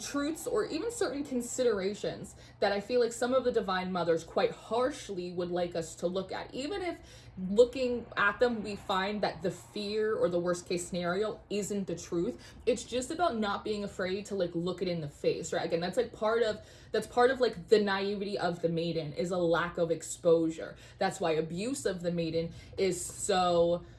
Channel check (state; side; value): identical; both; correlation 1.00